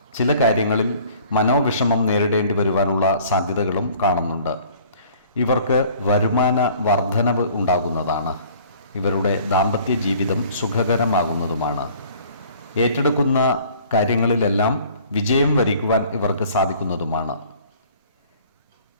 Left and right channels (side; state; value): both; inverted; correlation -0.53